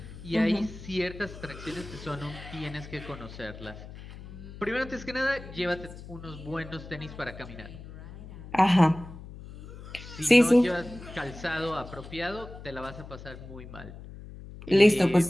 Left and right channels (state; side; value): noise; left; hum, 14 dB below the sound